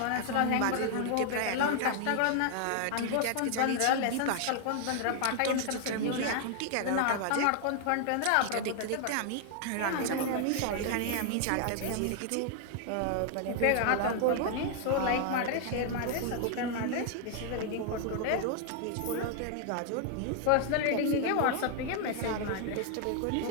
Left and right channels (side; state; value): both; different; correlation 0.00